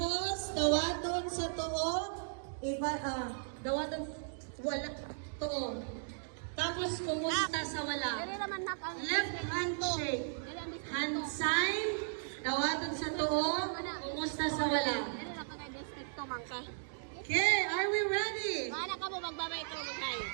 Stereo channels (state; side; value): silent; left; digital silence